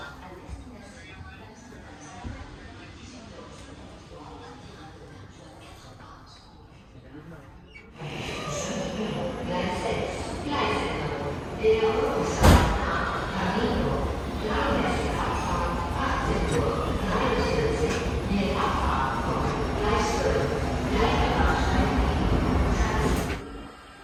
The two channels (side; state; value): both; identical; correlation 1.00